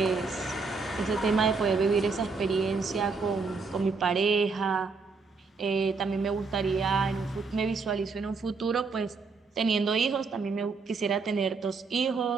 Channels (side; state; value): left; quieter; 4.5 dB